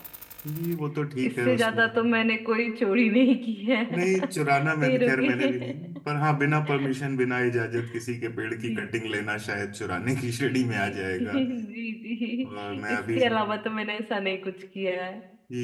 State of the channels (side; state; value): both; identical; correlation 1.00